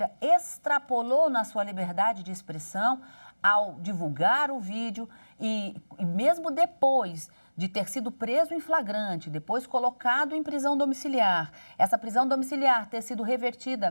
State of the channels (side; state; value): both; inverted; correlation -1.00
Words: extrapolou na sua liberdade de expressão ao divulgar o vídeo e mesmo depois de ter sido preso em flagrante, depois colocado em prisão domiciliar, essa prisão domiciliar ter sido